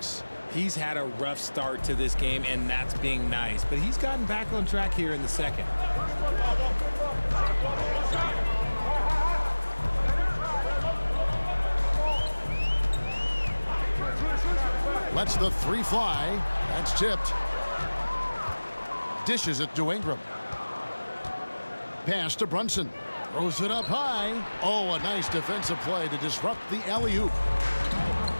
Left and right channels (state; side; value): inverted; both; correlation -1.00